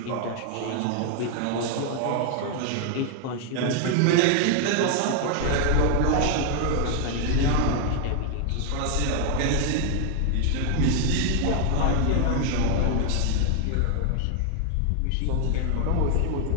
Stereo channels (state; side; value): different; both; correlation 0.00